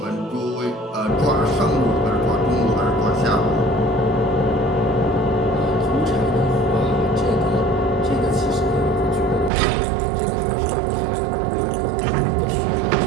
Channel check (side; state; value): left; drops out; at 9.5 s